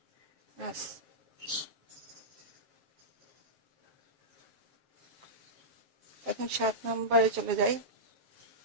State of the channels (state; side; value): late; left; 7.2 ms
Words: us. এখন 7 নম্বরে চলে যাই।